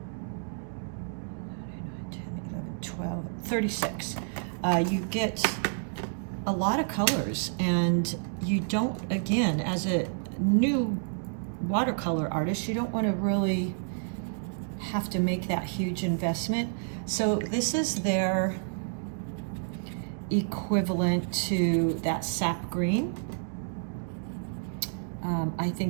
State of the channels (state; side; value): silent; left; digital silence